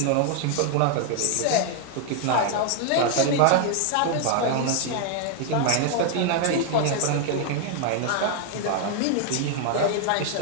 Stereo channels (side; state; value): both; different; correlation 0.00